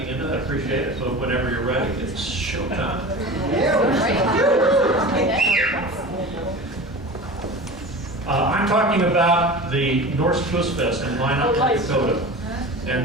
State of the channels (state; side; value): normal; both; correlation 0.33